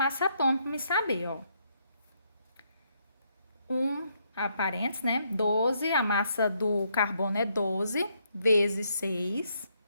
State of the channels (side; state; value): both; inverted; correlation -0.74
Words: atômica para me saber, ó. Parênteses, né? 12, a massa do carbono é 12 vezes 6,